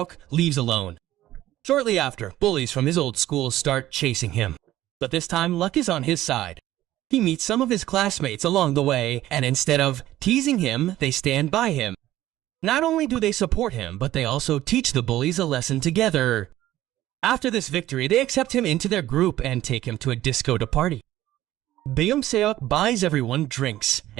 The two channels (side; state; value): left; quieter; 14.5 dB